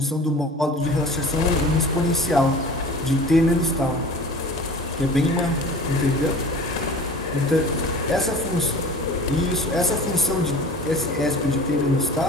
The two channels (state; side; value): normal; both; correlation 0.40